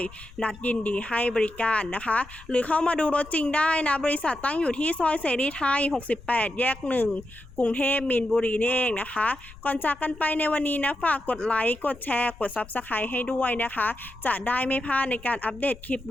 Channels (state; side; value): noise; left; rumble, 20 dB below the sound